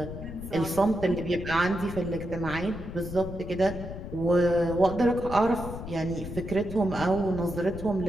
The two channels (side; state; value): left; noise; rumble, 9 dB below the sound